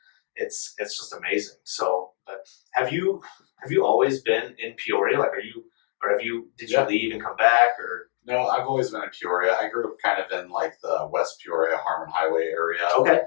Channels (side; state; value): right; silent; 62 dB below the other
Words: it's just amazing. So, but have you always been in Peoria? Like, did you leave and come back, or? No, I've always been in Peoria. I grew up kind of in like the West Peoria, Harmon Highway area. Okay.